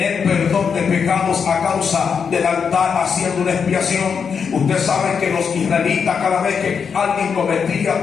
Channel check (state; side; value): quieter; right; 6.4 dB